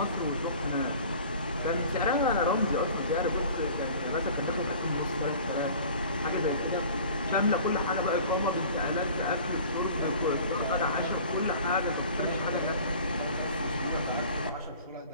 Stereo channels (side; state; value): both; inverted; correlation -0.45